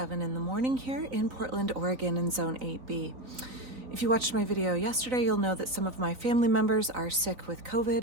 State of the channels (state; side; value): late; left; 3.9 ms